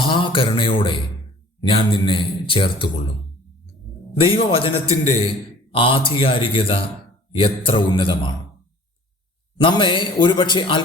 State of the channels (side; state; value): both; normal; correlation 0.50